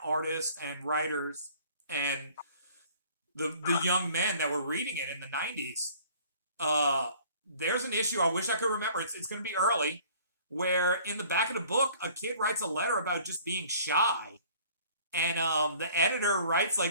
artists and writers and the young men that were reading it in the 90s. There's an issue, I wish I could remember, it's going to be early, where in the back of the book, a kid writes a letter about just being shy. And the editor writes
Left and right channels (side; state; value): both; inverted; correlation -0.52